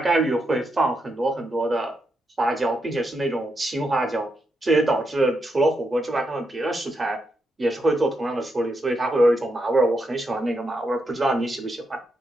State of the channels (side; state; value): both; normal; correlation 0.83